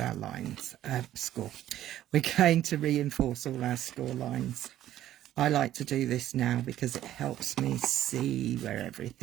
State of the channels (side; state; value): left; quieter; 12.7 dB